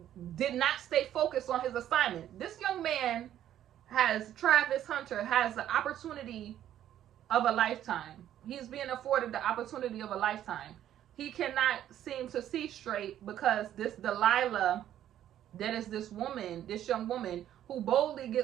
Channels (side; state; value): left; quieter; 11.4 dB